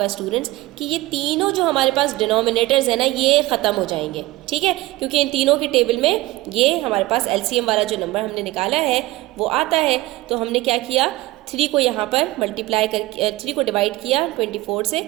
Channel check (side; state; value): left; quieter; 19.0 dB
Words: स्टूडेंट्स कि ये तीनों जो हमारे पास डिनोमिनेटर्स है ना ये ख़त्म हो जाएंगे, ठीक है, क्योंकि इन तीनों के टेबल में ये हमारे पास एलसीएम वाला जो नंबर हमने निकाला है वो आता है। तो हमने क्या किया, 3 को यहाँ पर मल्टीप्लाई कर 3 को डिवाइड किया 24 से